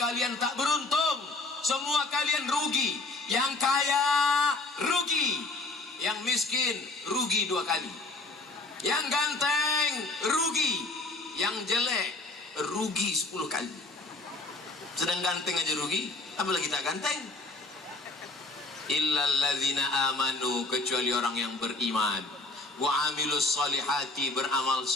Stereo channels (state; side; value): quieter; right; 3.1 dB